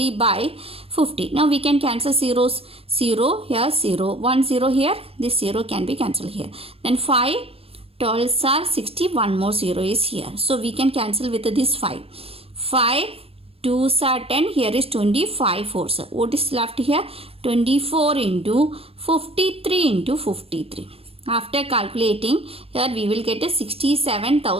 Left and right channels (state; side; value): late; left; 0.28 ms